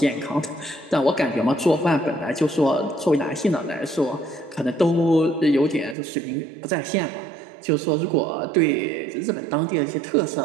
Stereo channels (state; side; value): drops out; left; at 6.0 s